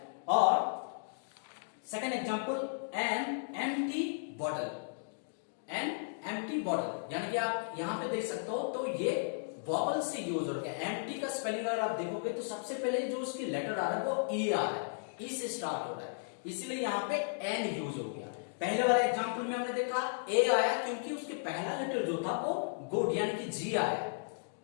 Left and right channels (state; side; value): silent; right; digital silence